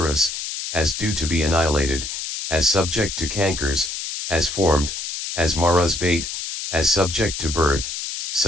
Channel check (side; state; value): left; noise; hiss, 5 dB below the sound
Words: as due to be annihilated, as subject to cankers, as formed, as Mara's bait, as subject to birth,